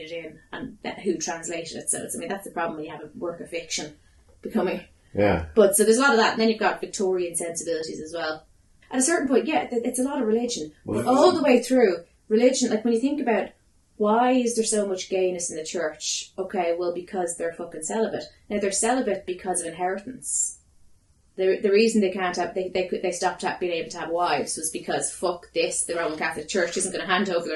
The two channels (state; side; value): identical; both; correlation 1.00